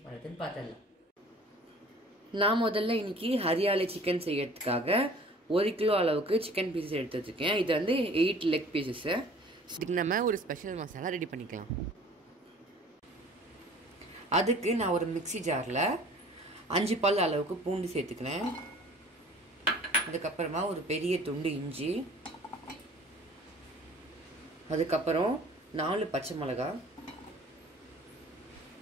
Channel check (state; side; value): normal; both; correlation 0.49